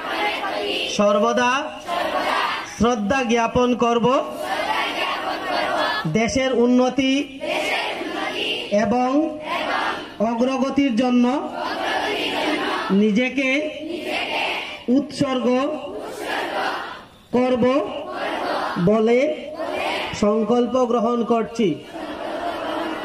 সর্বদা শ্রদ্ধা জ্ঞাপন করব। দেশের উন্নতি এবং অগ্রগতির জন্য নিজেকে উৎসর্গ করব বলে সংকল্প গ্রহণ করছি।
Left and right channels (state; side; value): identical; both; correlation 1.00